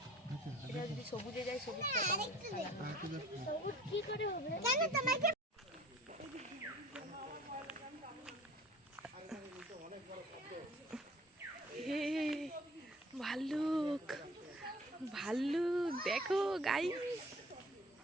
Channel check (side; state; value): both; normal; correlation 0.49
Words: এটা যদি সবুজে যায় সবুজটা সবুজ কি করে হবে? কেন তোমাকে হে ভাল্লুক, ভাল্লুক দেখো গাইস,